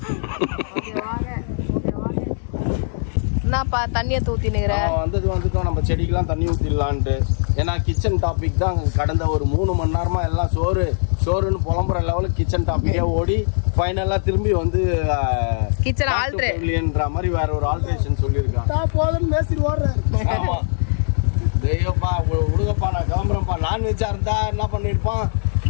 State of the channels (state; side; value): silent; right; digital silence